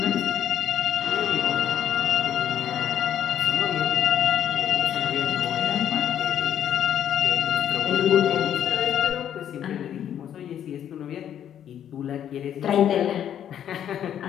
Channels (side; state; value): right; quieter; 9.9 dB